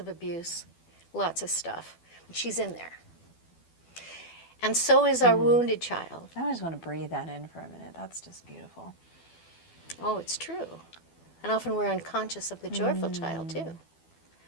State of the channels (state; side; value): late; right; 12 ms